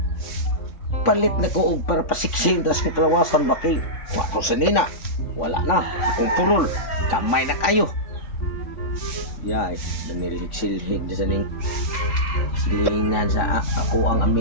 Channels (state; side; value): late; right; 3.6 ms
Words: palit na ko og para pasiksin das kong kalawasan ba kay wa ko sa nina. Wala na. Akong purol. Kamay na kayo. Yay, nanilhig-silhig na sa ning silingan sa ako ang